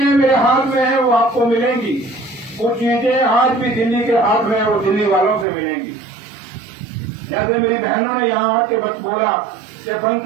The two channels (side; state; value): left; drops out; at 5.5 s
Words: मेरे हाथ में है वो आपको मिलेंगी। वो चीजें आज भी दिल्ली के हाथ में है, वो दिल्ली वालों से मिलेंगी। जैसे मेरी बहनों ने यहाँ आके बस बोला कि